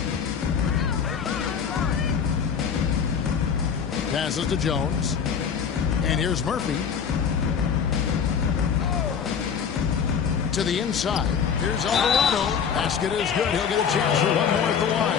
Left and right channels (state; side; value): quieter; right; 7.0 dB